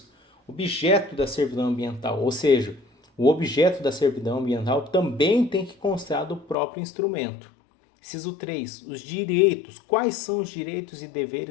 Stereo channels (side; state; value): right; drops out; at 6.6 s